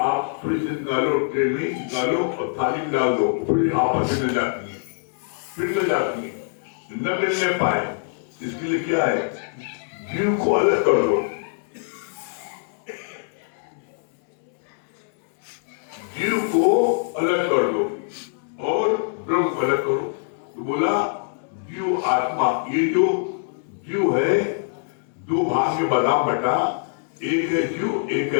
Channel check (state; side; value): silent; right; digital silence